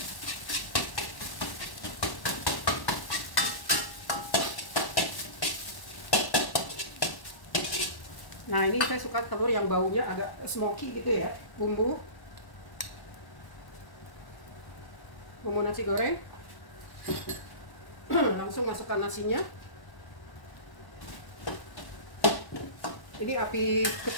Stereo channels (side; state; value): right; late; 1.1 ms